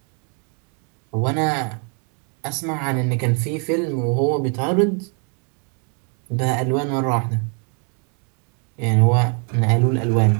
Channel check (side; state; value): left; quieter; 38.7 dB